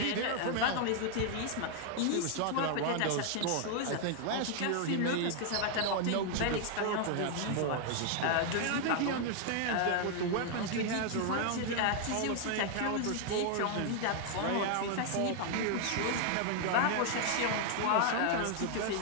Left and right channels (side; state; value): both; different; correlation 0.00